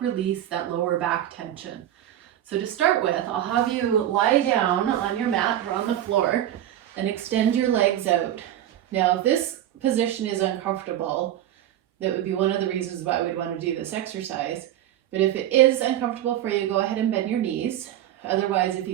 release that lower back tension. So to start with, I'll have you lie down on your mat or on the floor and extend your legs out. Now, if this position is uncomfortable, that would be one of the reasons why we'd want to do this exercise. But if it is uncomfortable for you, go ahead and bend your knees. Otherwise, if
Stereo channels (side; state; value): left; quieter; 12.0 dB